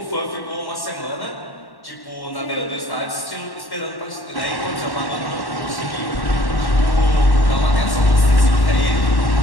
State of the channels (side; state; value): right; late; 1.1 ms